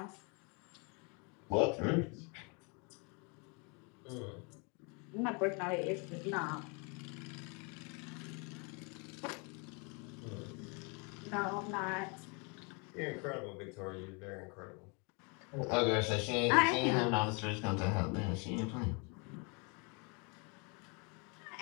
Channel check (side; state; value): right; quieter; 33.0 dB